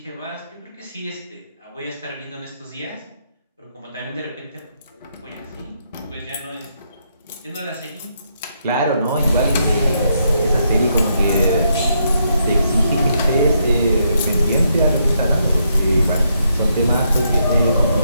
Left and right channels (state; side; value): inverted; both; correlation -0.77